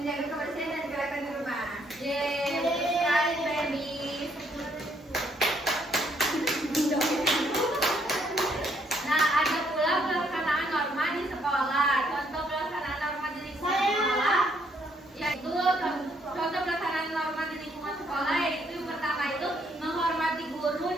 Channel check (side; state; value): both; normal; correlation 0.70